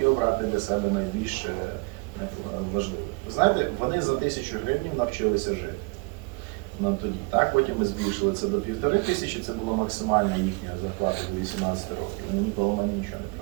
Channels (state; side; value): quieter; left; 30.4 dB